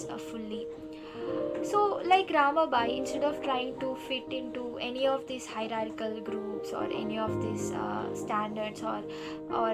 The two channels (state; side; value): identical; both; correlation 1.00